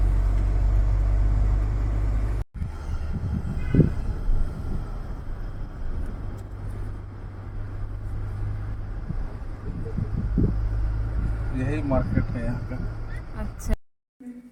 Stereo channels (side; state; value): both; identical; correlation 1.00